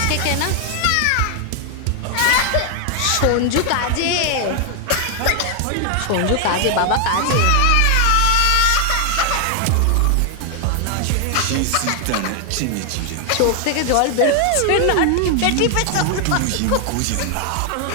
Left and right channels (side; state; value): both; different; correlation 0.00